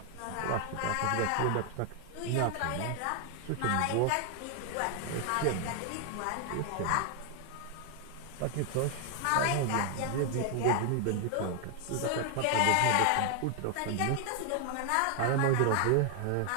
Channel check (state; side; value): different; both; correlation 0.00